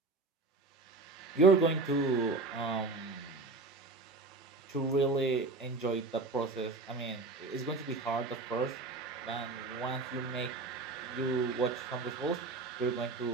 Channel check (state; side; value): quieter; left; 3.6 dB